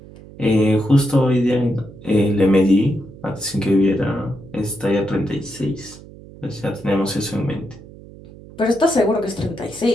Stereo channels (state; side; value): noise; right; hum, 19 dB below the sound